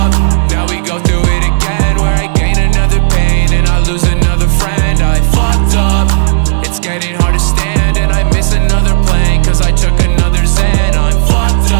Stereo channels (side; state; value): left; silent; digital silence